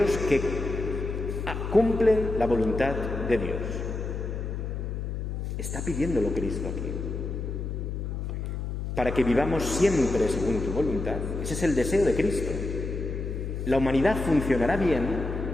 que cumplen la voluntad de Dios. Está pidiéndolo Cristo aquí. Para que vivamos siempre según tu voluntad. Ese es el deseo de Cristo. La humanidad funcionará bien,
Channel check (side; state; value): left; noise; hum, 4 dB below the sound